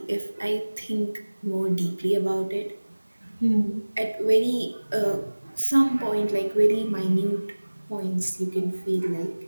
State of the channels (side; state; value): both; inverted; correlation -1.00